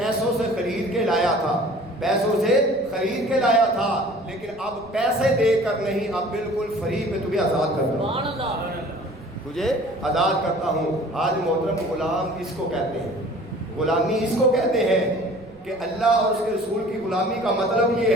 سے خرید کے لایا تھا، پیسوں سے خرید کے لایا تھا، لیکن اب پیسے دے کر نہیں، اب بالکل فری میں تجھے آزاد کرتا ہوں، تجھے آزاد کرتا ہوں۔ آج محترم غلام اس کو کہتے ہیں، غلامی اس کو کہتے ہیں کہ اللہ اور اس کے رسول کی غلامی کا مطلب یہ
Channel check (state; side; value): noise; right; rumble, 27 dB below the sound